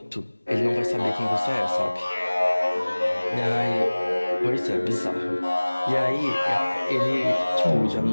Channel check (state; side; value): inverted; both; correlation -1.00